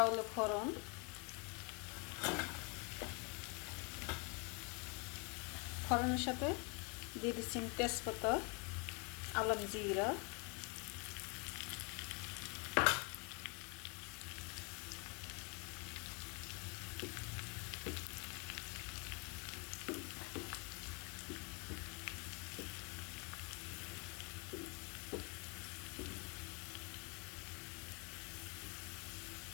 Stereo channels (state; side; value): quieter; right; 33.1 dB